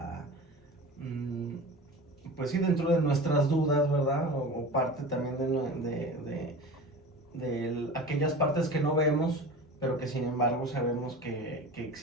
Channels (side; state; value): both; normal; correlation 0.34